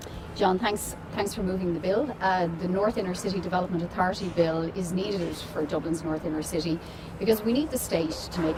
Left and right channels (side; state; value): both; identical; correlation 1.00